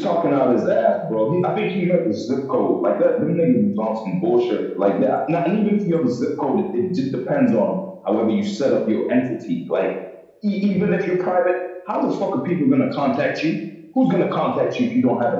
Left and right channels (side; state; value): both; identical; correlation 1.00